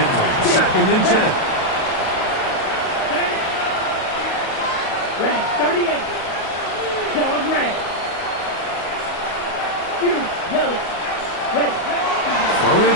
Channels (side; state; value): right; late; 37 ms